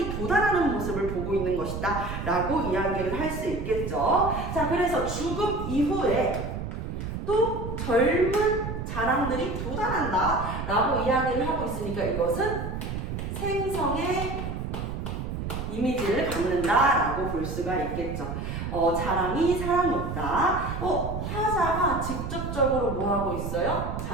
도달하는 모습을 보고 있는 것이다 라고 이야기를 할 수 있겠죠. 자, 그래서 죽음 이후에 또 젊은 자랑들이 도달한다 라고 이야기를 하고 있으니까 이것은 생성의 이미지를 갖는다 라고 볼 수가 있겠죠. 자랑이 사랑없다. 화자가 직접적으로 뭐 하고 있어요?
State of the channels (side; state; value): right; noise; rumble, 5 dB below the sound